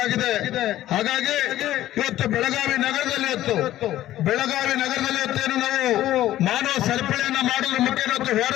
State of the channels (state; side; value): quieter; right; 13.8 dB